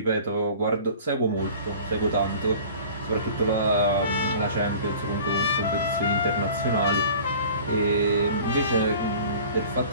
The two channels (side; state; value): both; inverted; correlation -0.44